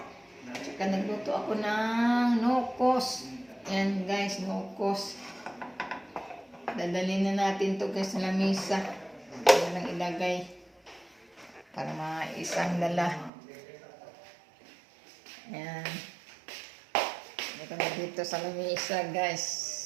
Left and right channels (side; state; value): left; drops out; at 13.3 s